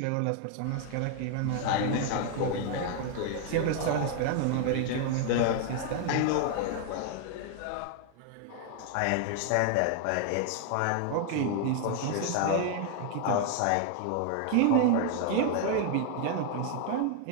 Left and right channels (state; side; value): different; both; correlation 0.00